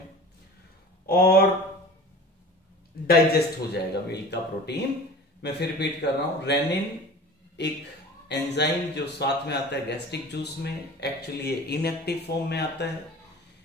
और डाइजेस्ट हो जाएगा मिल्क का प्रोटीन। मैं फिर रिपीट कर रहा हूं, रेनिन एक एंजाइम जो साथ में आता है गैस्ट्रिक जूस में, एक्चुअली ये इनएक्टिव फॉर्म में आता है।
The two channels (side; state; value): both; normal; correlation 0.39